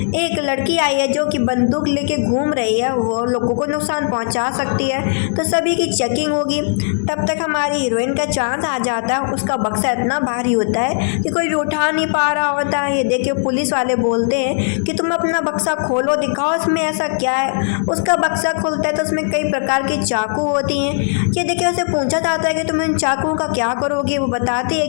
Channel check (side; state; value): right; silent; digital silence